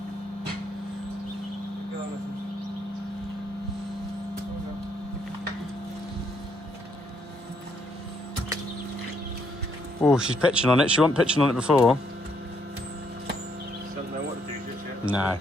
Oh, she's pitching on it. She wasn't pitching on it before. Doesn't know what to do just yet. No.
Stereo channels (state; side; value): normal; both; correlation 0.72